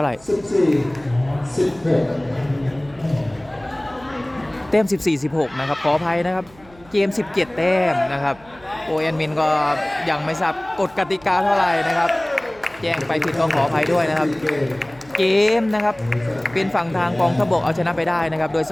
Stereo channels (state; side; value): noise; right; hum, 26 dB below the sound